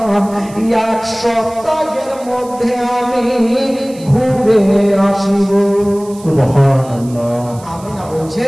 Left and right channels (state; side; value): noise; right; hiss, 22 dB below the sound